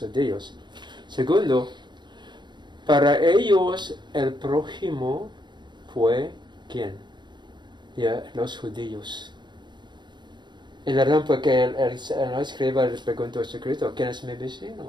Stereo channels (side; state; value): left; late; 0.22 ms